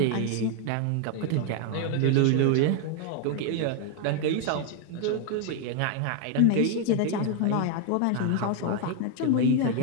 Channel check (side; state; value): both; different; correlation 0.00